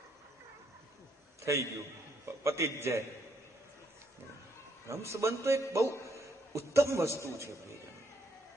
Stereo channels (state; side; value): normal; both; correlation 0.73